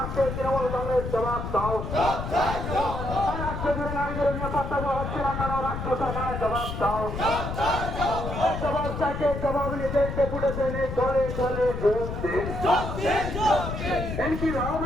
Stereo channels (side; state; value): left; noise; rumble, 5 dB below the sound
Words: তৃণমূল কংগ্রেস জবাব দাও। রাজ্যজুড়ে নারীদের নিরাপত্তা দেওয়া হচ্ছে না কেন রাজ্য সরকারের জবাব দাও। জবাব চাইতে জবাব নিতে ডেপুটেশনে চলে চলে যোগ দিন।